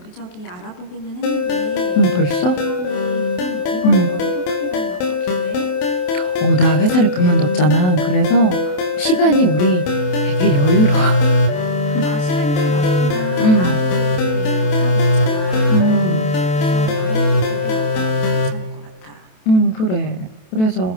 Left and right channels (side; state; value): right; late; 28 ms